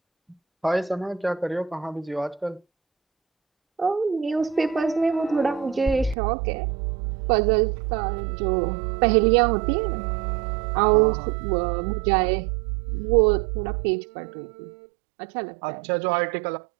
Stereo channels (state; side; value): drops out; left; at 6.2 s